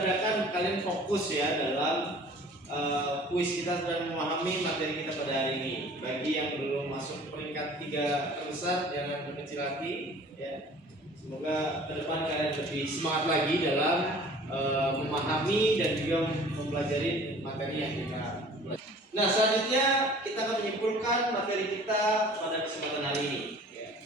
kalian fokus ya dalam kuis kita dan memahami materi kita pada hari ini. Bagi yang belum masuk peringkat 3 terbesar, jangan berkecil hati ya. Semoga ke depan kalian lebih semangat lagi dalam memahami dan juga mempelajari materi yang kita pelajari. Nah, selanjutnya kita akan menyimpulkan materi kita pada kesempatan hari ini. Ya.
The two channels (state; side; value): normal; both; correlation 0.48